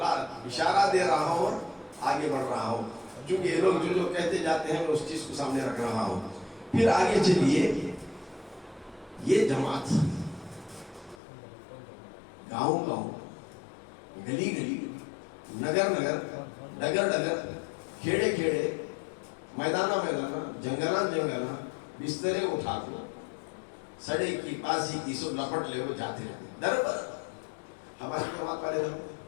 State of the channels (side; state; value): right; drops out; at 11.2 s